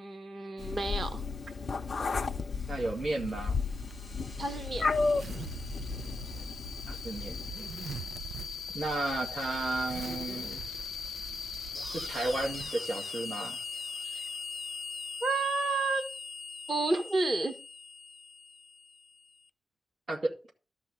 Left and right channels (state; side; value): normal; both; correlation 0.82